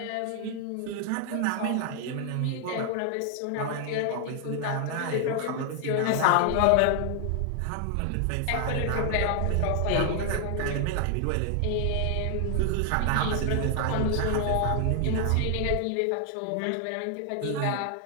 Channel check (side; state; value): both; different; correlation 0.00